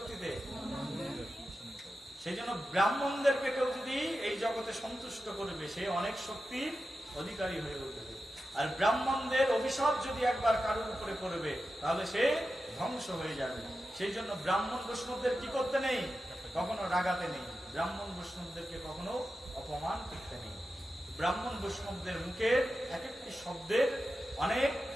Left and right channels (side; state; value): both; normal; correlation 0.91